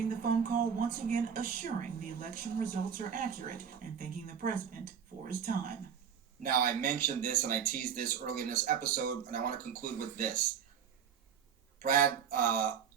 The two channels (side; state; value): left; quieter; 7.8 dB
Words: the phone call once again assuring the election results are accurate and thanking the president for his time. Now, I mentioned this and I teased this early in this episode, and I want to conclude with this. Brad